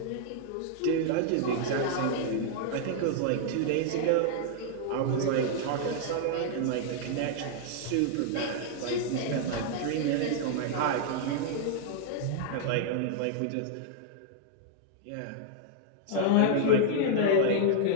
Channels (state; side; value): different; both; correlation -0.01